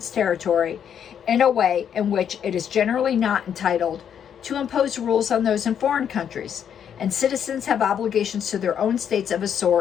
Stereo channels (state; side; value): quieter; right; 8.5 dB